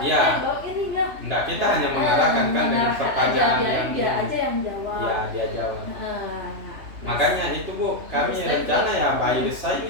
Iya. bahwa ini enggak. Enggak, kita hanya mengarahkan kan dengan pertanyaan yang dia aja yang jawab. ya dia jawab. Nah, Makanya itu Bu, kami Harus rencana tadi. ya by design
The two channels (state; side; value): late; left; 3.0 ms